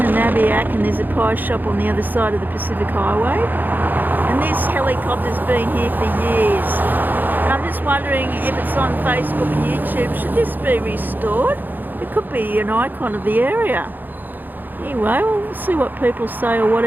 Nabiac, and there's a pie shop on the other side of the Pacific Highway. And this helicopter's been here for years. And I'm just wondering if it's on Facebook and YouTube, should this be restored? It could be an icon of the area. Anyway, we'll see what people say or what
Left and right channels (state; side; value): late; left; 0.087 ms